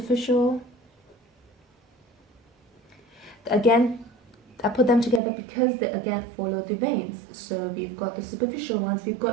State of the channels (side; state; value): left; drops out; at 5.2 s